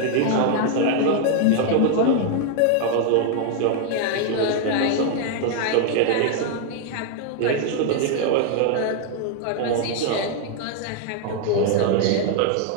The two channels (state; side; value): different; both; correlation 0.00